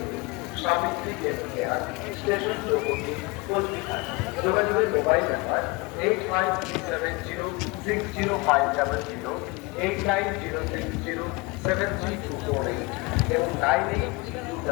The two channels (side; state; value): right; quieter; 25.4 dB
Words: সাবিত্রী কেয়ার স্টেশন চৌপতি কোচবিহার। যোগাযোগের মোবাইল নাম্বার 8537060500, 8906073248 এবং